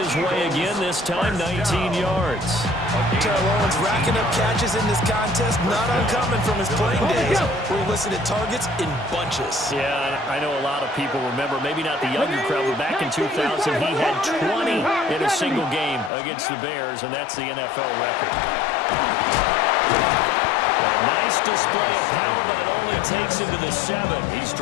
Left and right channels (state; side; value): drops out; right; at 16.1 s